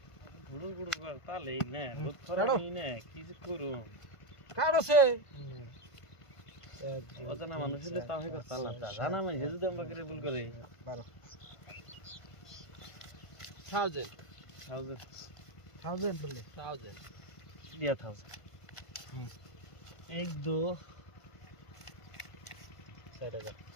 गुड़ुर गुड़ुर करता ले ने बहुत थोड़ा नहीं ने किस करूं काढो से অজানা মানুষ হলে তাও হয়তো চালাতা জানা মানে যদি আমরা করে ভুল করে 1000 1000 বলে 1000 দিয়া থাও 1 2 4000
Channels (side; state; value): right; late; 1.5 ms